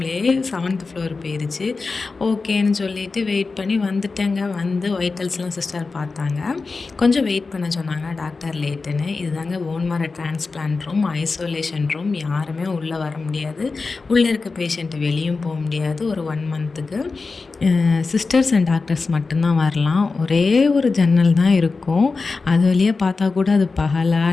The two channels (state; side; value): quieter; right; 4.1 dB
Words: 7th ஃப்ளோர் போயிருச்சு. ஓகேன்னு சொல்லிட்டு வெயிட் பண்ணி வந்துட்டேங்க. வைட்டல்ஸ்லாம் சிஸ்டர் பார்த்தாங்க. கொஞ்சம் வெயிட் பண்ண சொன்னாங்க டாக்டர் லேட்டுன்னு. இதுதாங்க phone மேரோ transplant room, isolation room. யாருமே உள்ளே வர முடியாது. உள்ளே இருக்க பேஷண்ட்டு வெளியும் போக முடியாது. ஒரு 1 மந்த்துக்கு சிஸ்டர்ஸ் அண்ட் டாக்டர்ஸ் மட்டும்தான் வரலாம். ஒரே ஒரு ஜன்னல் தான் இருக்கும். அது வழியாக பார்த்தா கூட அது பகலா